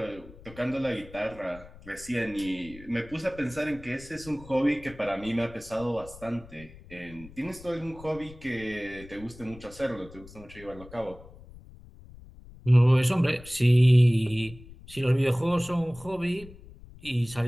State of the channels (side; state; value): left; noise; rumble, 19 dB below the sound